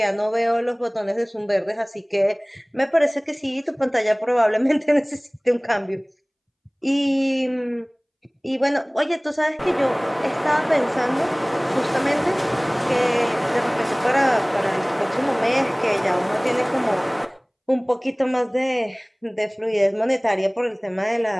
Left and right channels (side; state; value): both; identical; correlation 1.00